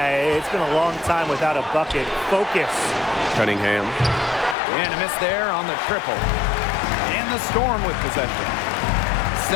it's been a long time without a bucket. Focus. Cunningham. And a miss there on the triple. And the Storm with possession.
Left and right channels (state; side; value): drops out; right; at 4.5 s